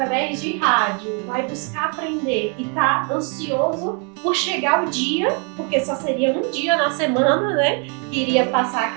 de rádio vai buscar aprender e tá ansioso por chegar o dia, porque só seria um dia na semana, né? Que iria passar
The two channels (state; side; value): quieter; left; 37.1 dB